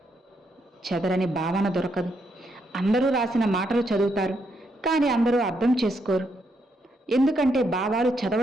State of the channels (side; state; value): both; normal; correlation 0.78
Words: చెదరని భావన దొరకదు. అందరూ రాసిన మాటలు చదువుతారు, కానీ అందరూ అర్థం చేసుకోరు. ఎందుకంటే భావాలు